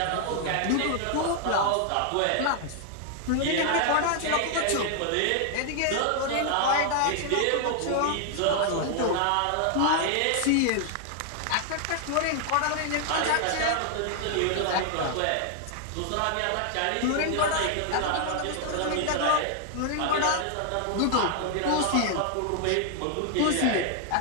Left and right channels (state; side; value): different; both; correlation 0.00